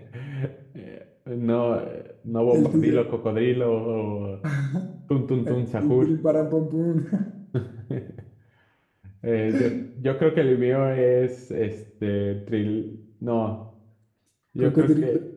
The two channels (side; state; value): both; identical; correlation 1.00